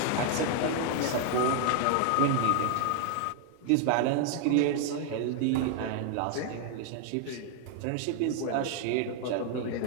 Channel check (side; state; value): both; different; correlation 0.00